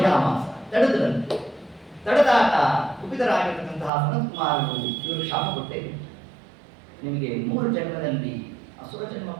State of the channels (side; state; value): left; drops out; at 3.9 s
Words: ತಡೆದ್ರಂತೆ. ತಡೆದಾಗ ಕುಪಿತರಾಗಿರ್ತಕ್ಕಂತಹ ಸನತ್ಕುಮಾರರು ಇವರು ಶಾಪ ಕೊಟ್ಟೇವೆ, ನಿಮಗೆ 3 ಜನ್ಮದಲ್ಲಿ ಅಸುರ ಜನ್ಮ